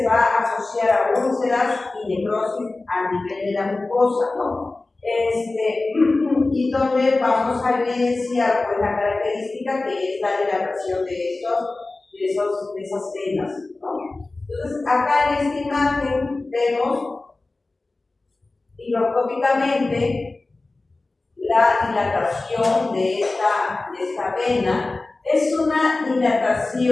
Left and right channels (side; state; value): right; quieter; 3.3 dB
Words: va a asociar a úlceras y necrosis a nivel de la mucosa, ¿no? Y donde vamos a evidenciar pues, la característica que es la dilatación de esas venas, ¿no? Entonces, acá en esta imagen vemos microscópicamente la dilatación de esta vena. Es una